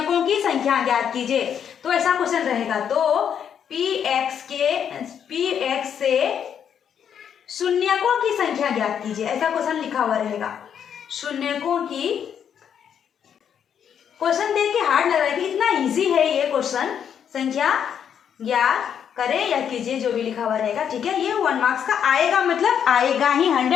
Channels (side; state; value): right; quieter; 8.3 dB